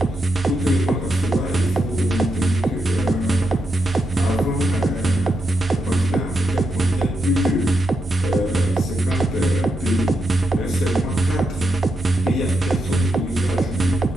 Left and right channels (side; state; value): both; normal; correlation 0.84